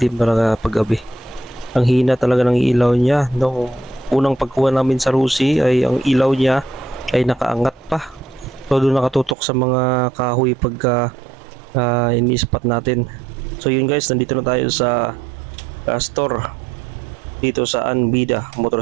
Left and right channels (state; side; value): drops out; left; at 9.3 s